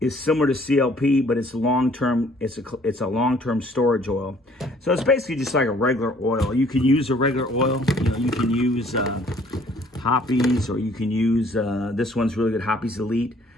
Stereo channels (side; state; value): both; normal; correlation 0.59